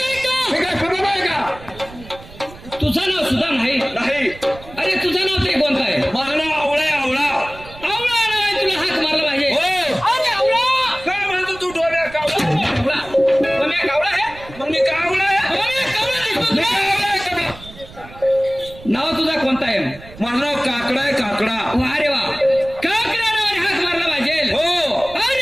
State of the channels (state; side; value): noise; right; rumble, 18 dB below the sound